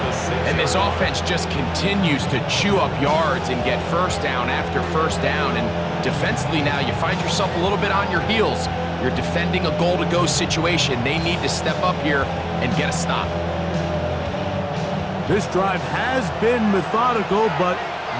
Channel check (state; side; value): identical; both; correlation 1.00